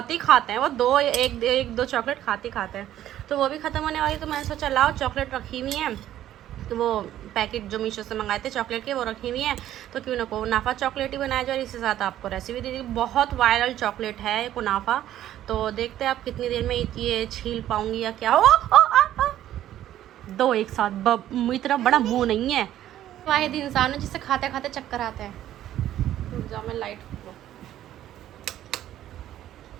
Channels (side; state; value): left; quieter; 12.4 dB